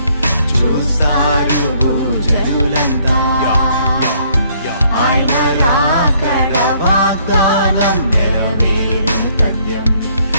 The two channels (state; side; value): inverted; both; correlation -0.66